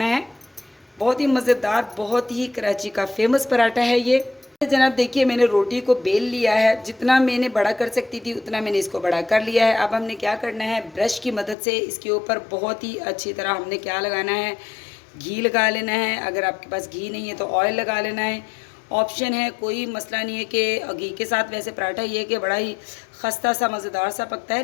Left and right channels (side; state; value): right; drops out; at 11.6 s